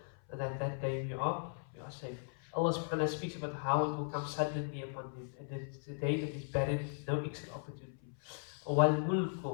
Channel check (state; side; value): silent; right; 53 dB below the other